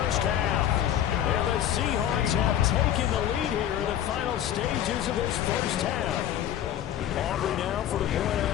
half. And the Seahawks have taken the lead here in the final stages of this first half. Aubrey now for the point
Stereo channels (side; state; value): right; quieter; 10.9 dB